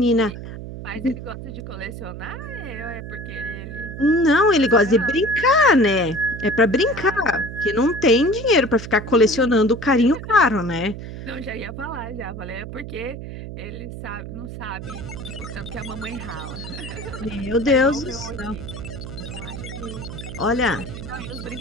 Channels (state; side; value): noise; right; hum, 10 dB below the sound